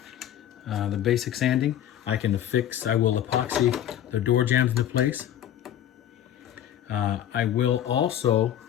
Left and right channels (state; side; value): quieter; right; 10.9 dB